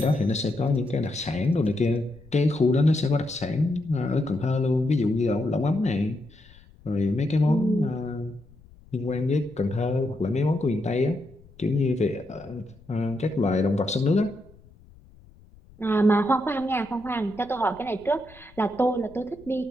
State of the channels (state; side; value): noise; left; rumble, 25 dB below the sound